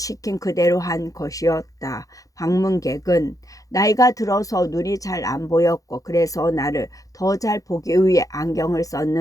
그대로 한 것이었다. 방문객은 나이가 들어서 눈이 잘 안 보였고 그래서 나를 더 잘 보기 위해 안경을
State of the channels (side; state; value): right; late; 0.17 ms